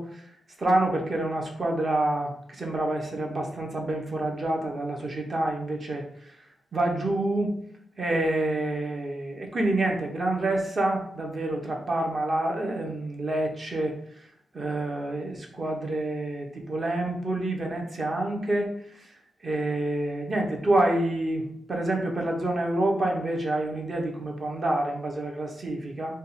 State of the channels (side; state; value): both; normal; correlation 0.88